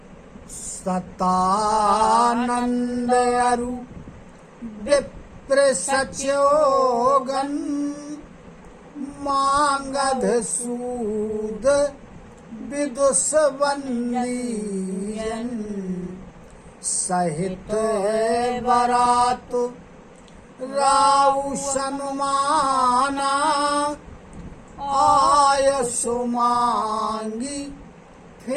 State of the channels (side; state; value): both; identical; correlation 1.00